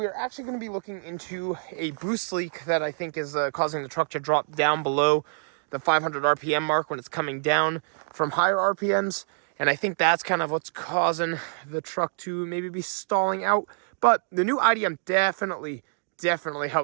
are actually going to be looking into a boost leak that I think is causing the truck to drop down below the 500 RPM mark when it's coming down from higher RPMs. And I think that's kind of what's causing the truck to maybe be stalling out. But the new IDM definitely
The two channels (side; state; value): left; silent; digital silence